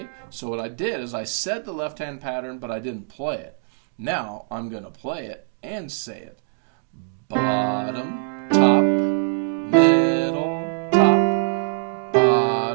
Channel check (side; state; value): left; silent; digital silence